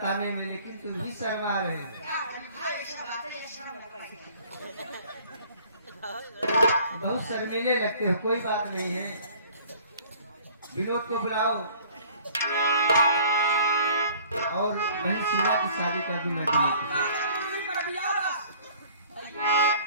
में, लेकिन तुम भी शर्मा रहे हो। बहुत शर्मीले लगते हो। कोई बात नहीं है, विनोद को बुलाओ और बहन शीला की शादी कर दूं मैं।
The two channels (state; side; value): inverted; both; correlation -0.53